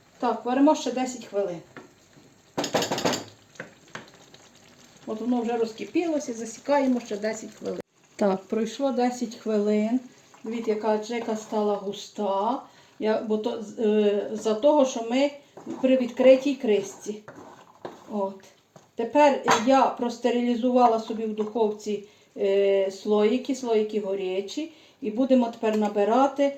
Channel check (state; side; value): identical; both; correlation 1.00